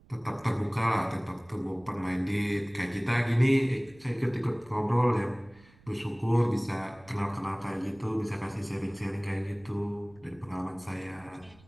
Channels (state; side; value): noise; right; rumble, 26 dB below the sound